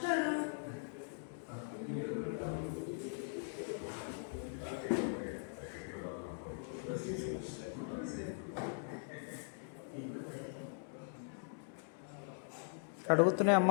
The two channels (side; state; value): right; silent; digital silence